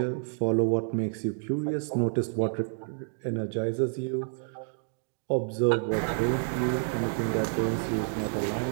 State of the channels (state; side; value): silent; left; digital silence